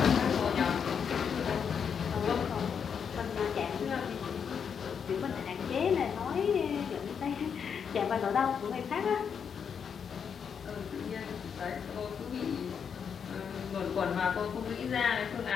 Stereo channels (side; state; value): right; quieter; 7.0 dB